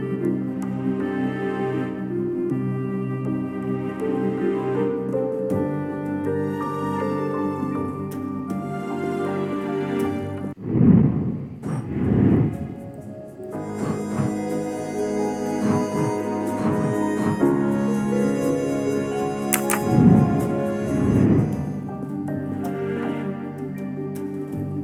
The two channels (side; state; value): both; identical; correlation 1.00